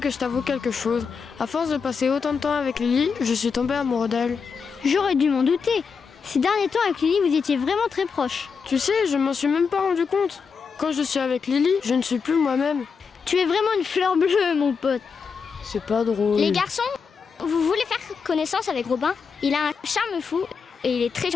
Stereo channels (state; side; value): quieter; right; 5.7 dB